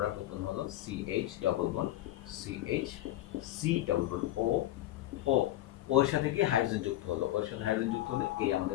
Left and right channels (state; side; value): quieter; right; 14.6 dB